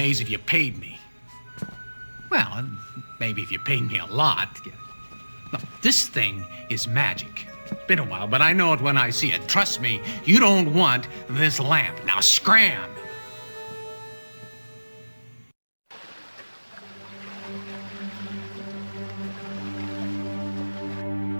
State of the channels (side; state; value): both; inverted; correlation -1.00